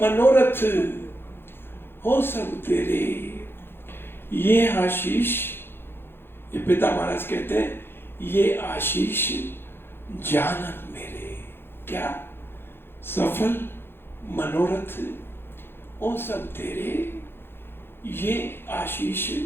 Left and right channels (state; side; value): late; right; 0.11 ms